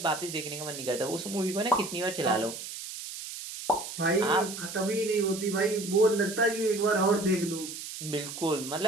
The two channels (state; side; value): noise; right; hiss, 9 dB below the sound